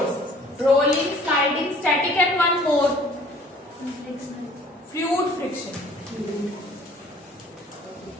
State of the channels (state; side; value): normal; both; correlation 0.54